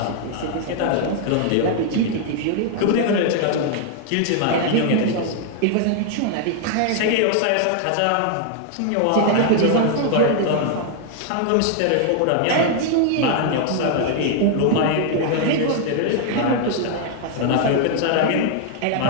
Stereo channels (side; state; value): both; different; correlation 0.00